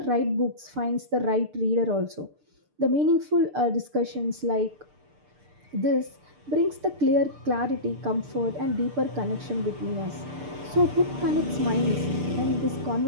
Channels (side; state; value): left; late; 6.7 ms